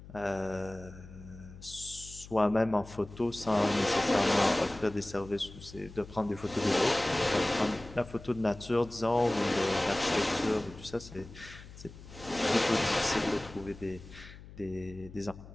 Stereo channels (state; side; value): noise; left; hum, 17 dB below the sound